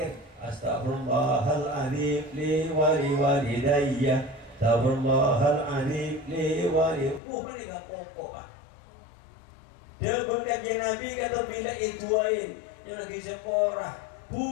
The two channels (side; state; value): right; drops out; at 7.2 s